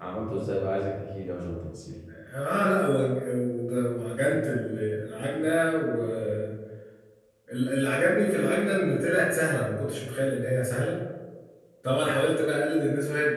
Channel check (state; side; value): identical; both; correlation 1.00